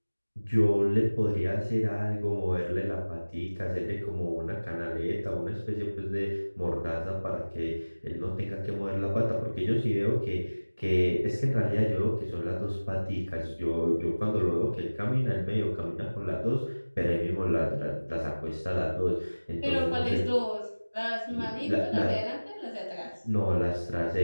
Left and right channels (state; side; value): inverted; both; correlation -1.00